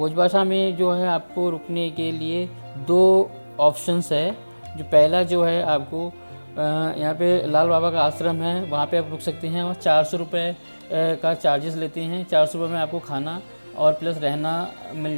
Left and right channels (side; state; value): both; inverted; correlation -1.00